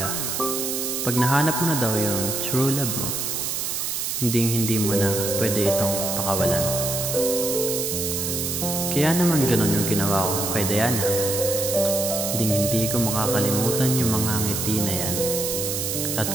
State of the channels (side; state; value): right; noise; hiss, 2 dB below the sound